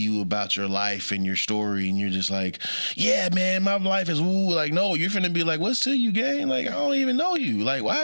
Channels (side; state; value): both; inverted; correlation -1.00